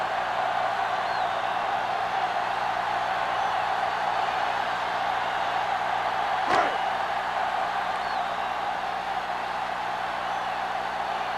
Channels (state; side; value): identical; both; correlation 1.00